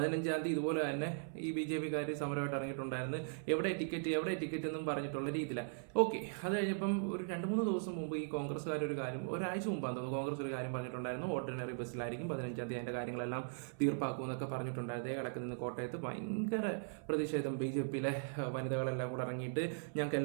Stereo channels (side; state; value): left; silent; 52 dB below the other